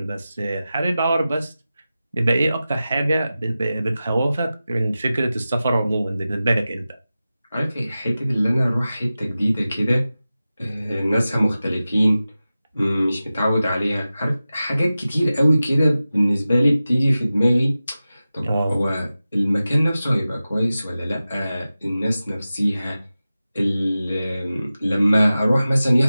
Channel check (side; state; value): both; inverted; correlation -0.95